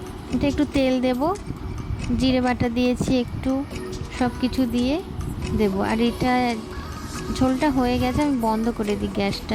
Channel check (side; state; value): both; identical; correlation 1.00